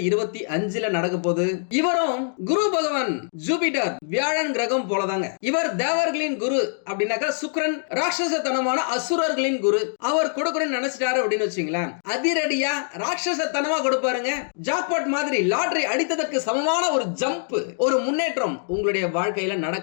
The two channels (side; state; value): right; silent; digital silence